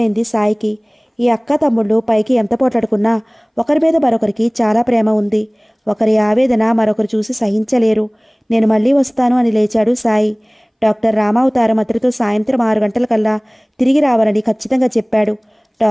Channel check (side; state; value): both; identical; correlation 1.00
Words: సాయికి. ఈ అక్క తమ్ముళ్ళు పైకి ఎంత పోట్లాడుకున్నా ఒకరి మీద మరొకరికి చాలా ప్రేమ ఉంది. ఒకరి ఆవేదన మరొకరు చూసి సహించలేరు. నేను మళ్ళీ వస్తాను అని లేచాడు సాయి. డాక్టర్ రామావతారం అతడితో సాయంత్రం 6 గంటలకల్లా తిరిగి రావాలని ఖచ్చితంగా చెప్పాడు.